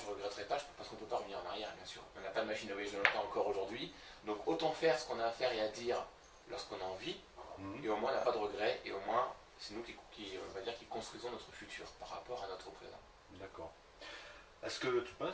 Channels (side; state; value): both; identical; correlation 1.00